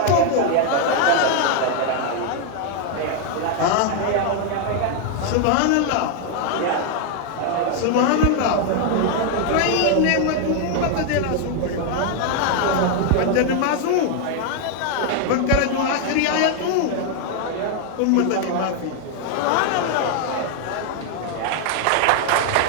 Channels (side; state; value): both; different; correlation 0.00